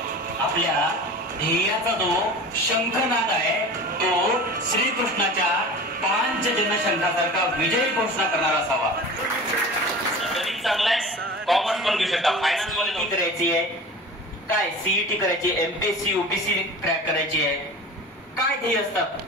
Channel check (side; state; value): both; normal; correlation 0.36